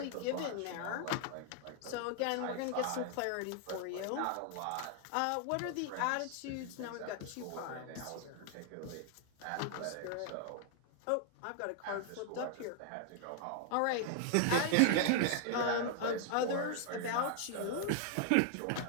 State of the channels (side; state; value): both; different; correlation 0.00